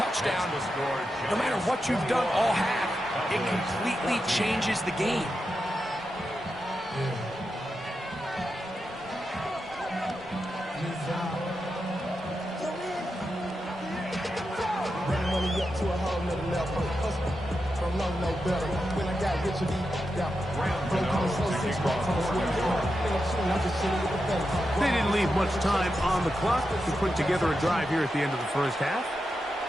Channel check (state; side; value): normal; both; correlation 0.88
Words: No matter what you've done all half, it completely changes the game. They didn't leave much time on the clock to put together a drive here at the end of the first half.